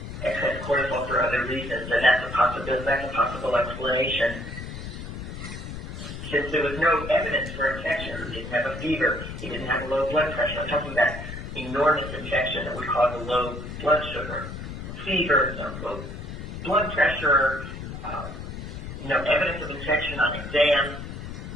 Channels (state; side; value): noise; left; rumble, 9 dB below the sound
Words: excess cortisol for other reasons, and that's a possible explanation. Since there was no evidence for infection, he didn't have a fever, he didn't have a low blood pressure. I'm talking about enormous infection that would cause a low blood sugar, fever, low blood pressure, no evidence of infection on exam,